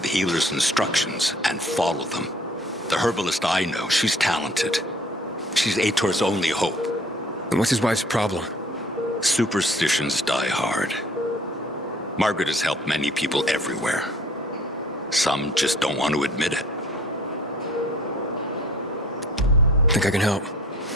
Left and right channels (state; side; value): normal; both; correlation 0.53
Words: healer's instructions and follow them. The herbalist I know, she's talented. She's Aitor's only hope. And what's his wife's problem? Superstitions die hard. Margaret has helped many people everywhere. Some just don't want to admit it. Think I can help?